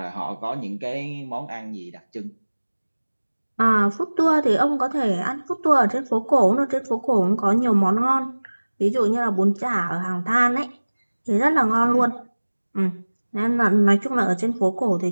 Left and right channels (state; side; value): inverted; both; correlation -1.00